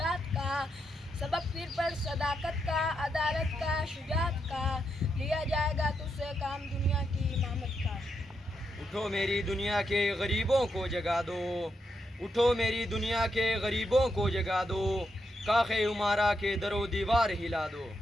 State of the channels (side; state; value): both; normal; correlation 0.82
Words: کا، سبق پھر پڑھ صداقت کا، عدالت کا، شجاعت کا، لیا جائے گا تجھ سے کام دنیا کی امامت کا۔ اٹھو میری دنیا کے غریبوں کو جگا دو، اٹھو میری دنیا کے غریبوں کو جگا دو، کاخ عمارہ کے در و دیوار ہلا دو۔